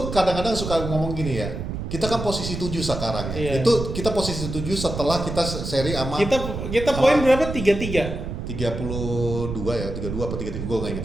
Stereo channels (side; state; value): right; noise; rumble, 6 dB below the sound